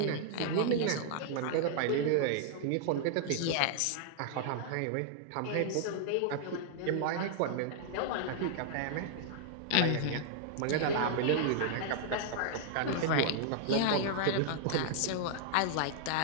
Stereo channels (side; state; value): both; different; correlation -0.01